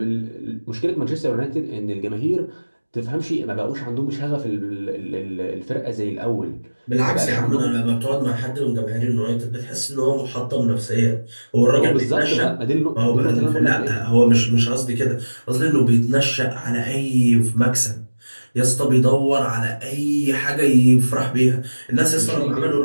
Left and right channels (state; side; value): inverted; both; correlation -1.00